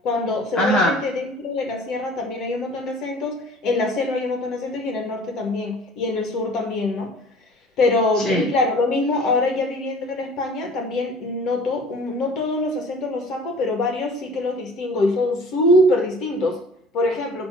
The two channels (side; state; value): both; normal; correlation 0.47